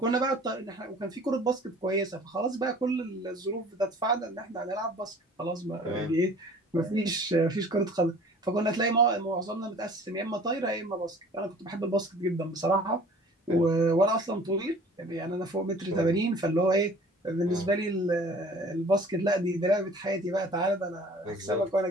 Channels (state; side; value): normal; both; correlation 0.48